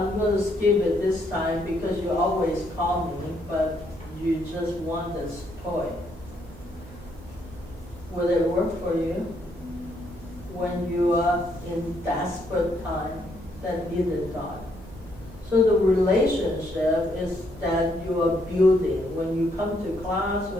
going to skip it this time because you always call me, but you just want this toy. Will it work for you when you are in desperate time that needed God? So the relationship is that you are building when you come to class,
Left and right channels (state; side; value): noise; right; hum, 18 dB below the sound